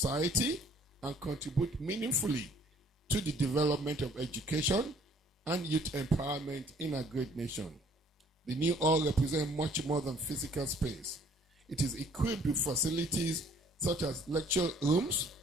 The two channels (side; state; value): both; normal; correlation 0.59